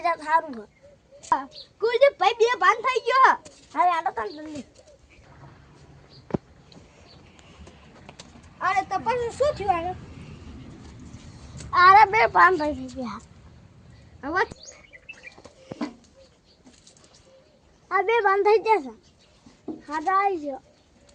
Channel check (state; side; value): identical; both; correlation 1.00